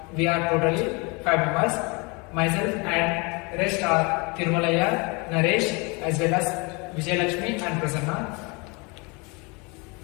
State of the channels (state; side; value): quieter; right; 29.3 dB